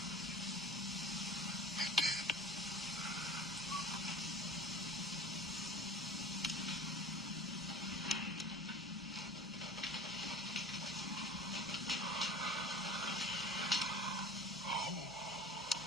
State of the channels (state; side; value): normal; both; correlation 0.39